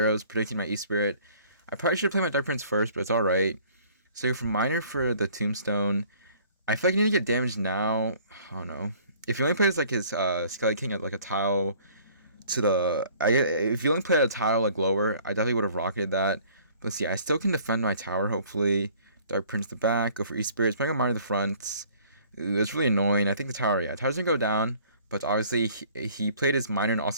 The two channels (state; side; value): inverted; both; correlation -0.56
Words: predicting my E-Spirit. I probably should play my Dark Prince first, but it's alright. So go for Minor for the Tombstone. I feel like I need to get damage now. I don't know. If he only plays like his Skelly King at like a tile to if you only played a tile like lower, I definitely would have rocketed that. But let's see, I still can defend my tower, hopefully. Dark Prince the back, go for E-Spirit, playing on Minor the front. Ooh, it's really annoying. I think the tower's gonna go down. But obviously, he played his Minor and